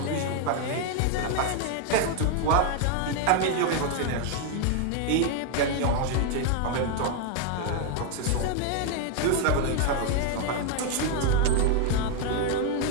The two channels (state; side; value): different; both; correlation 0.00